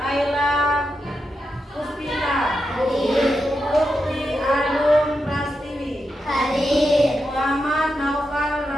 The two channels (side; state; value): both; normal; correlation 0.87